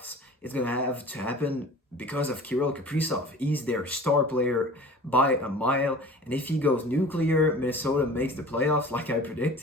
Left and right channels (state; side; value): normal; both; correlation 0.42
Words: it's going to have to happen because of Kirill Kaprizov. He's their star player by a mile. And if he goes nuclear, Minnesota makes the playoffs like I